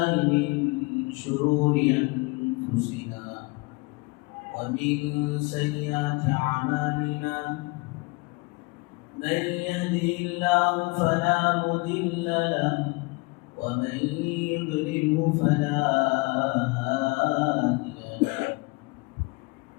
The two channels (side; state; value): right; quieter; 26.8 dB